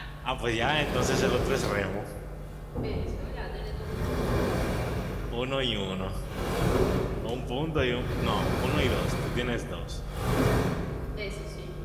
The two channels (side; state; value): both; identical; correlation 1.00